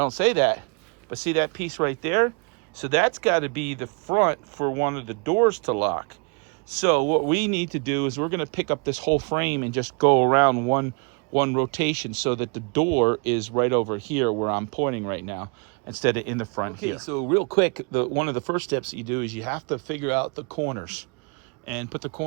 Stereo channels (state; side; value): quieter; left; 35.0 dB